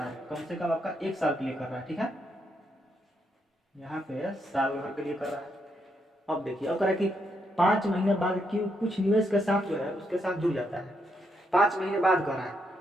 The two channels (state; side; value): normal; both; correlation 0.78